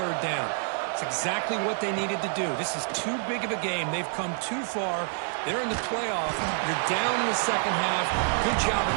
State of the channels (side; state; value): left; silent; 60 dB below the other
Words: down. It's exactly what they needed to do. This is too big of a game. They've come too far. They're in the playoff. You're down in the second half. Good job of